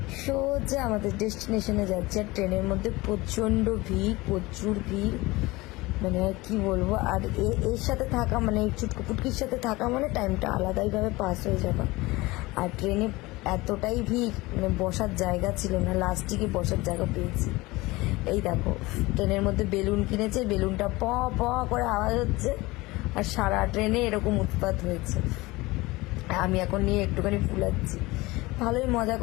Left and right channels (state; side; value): quieter; right; 21.3 dB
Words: সোজা আমাদের ডেস্টিনেশনে যাচ্ছি। আর ট্রেনের মধ্যে প্রচণ্ড ভিড়, প্রচুর ভিড়, মানে কি বলবো। আর এর সাথে থাকা মানে এই চুটকু পুটকির সাথে থাকা মানে টাইমটা আলাদাইভাবে পাস হয়ে যাবে। আর ট্রেনে এতটাই ভিড়, মানে বসার জায়গা ছিল না, লাস্টে গিয়ে বসার জায়গা পেয়েছি। এই দেখো ট্রেনের মধ্যে বেলুন কিনেছে, বেলুনটা প প করে আওয়াজ হচ্ছে, আর সারা ট্রেনে এরকম উৎপাত হয়েছে। আমি এখন নিয়ে একটুখানি ফুলাচ্ছি। ভালোই মজা